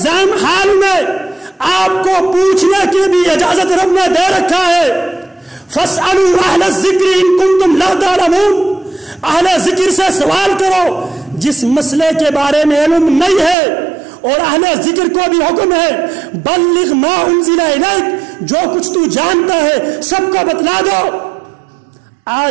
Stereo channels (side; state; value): left; drops out; at 13.6 s